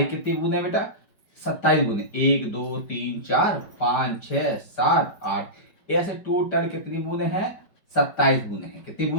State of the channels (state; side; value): late; right; 5.1 ms